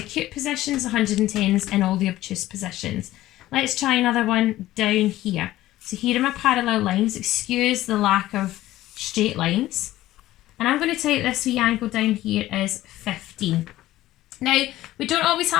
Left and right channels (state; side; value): quieter; right; 15.4 dB